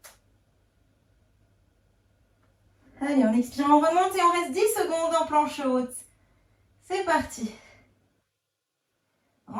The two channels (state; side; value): identical; both; correlation 1.00